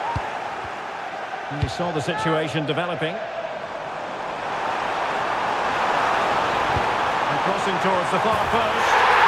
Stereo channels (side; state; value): both; identical; correlation 1.00